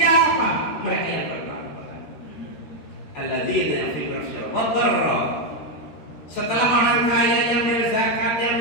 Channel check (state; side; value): late; right; 13 ms